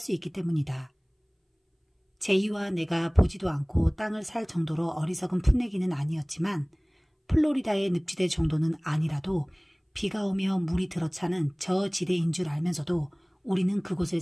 있기 때문이다. 제이와 내가 보지도 않고 땅을 살 정도로 어리석은 풋내기는 아니었지만 플로리다의 늪지대 정도는 아니라도 비가 오며 물이 들어차는 저 지대인 줄 알면서도 우리는 그곳을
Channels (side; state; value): both; identical; correlation 1.00